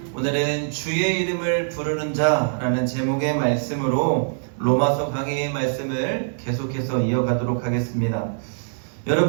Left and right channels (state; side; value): silent; left; 63 dB below the other